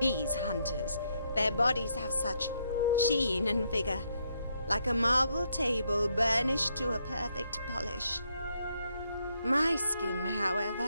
hunters, their bodies have such sheen and vigor, like a marble table burnished to a perfect polish. My skin,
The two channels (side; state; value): both; inverted; correlation -0.75